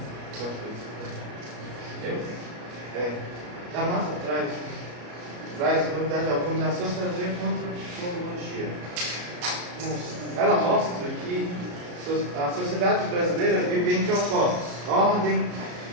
D'Amato traz novidade alguma na sociologia quanto à antropologia. Ela mostra que a sociedade brasileira vive entre opostos: ordem,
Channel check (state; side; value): late; left; 33 ms